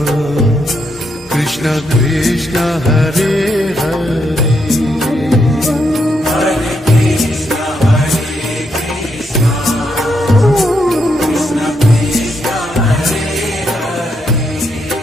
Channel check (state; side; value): normal; both; correlation 0.79